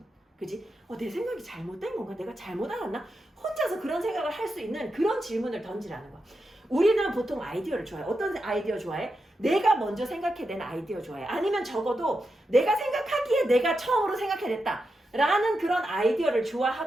그지? 내 생각이 잘못된 건가? 내가 잘못 알았나? 혼자서 그런 생각을 할 수 있는 그런 질문을 던지라는 거야. 우리는 보통 아이디어를 좋아해. 어떤 아이디어 좋아해? 내가 먼저 생각해낸 아이디어 좋아해. 아니면 적어도 내가 생각하기에 내가 처음으로 생각해냈다 라는 그런 아이디어를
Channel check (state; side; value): normal; both; correlation 0.87